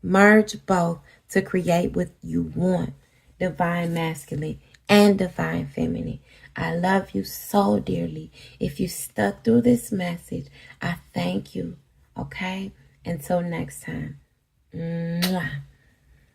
Merge both to create what you want. Divine masculine and divine feminine. I love you so dearly. If you stuck through this message, I thank you. Okay? Until next time. Mwah.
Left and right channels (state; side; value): identical; both; correlation 1.00